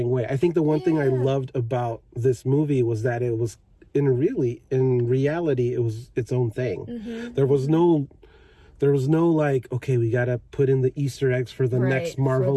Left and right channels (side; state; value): both; identical; correlation 1.00